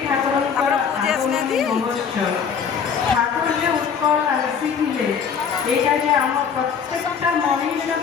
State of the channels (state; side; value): quieter; right; 6.8 dB